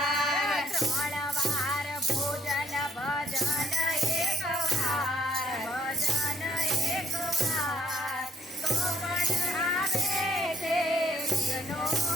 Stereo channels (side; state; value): both; normal; correlation 0.66